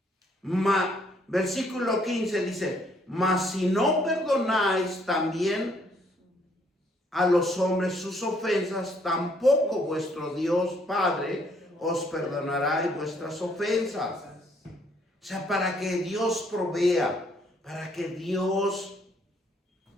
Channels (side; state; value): both; normal; correlation 0.67